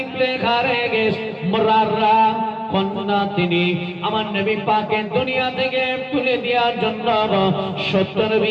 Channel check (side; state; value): both; identical; correlation 1.00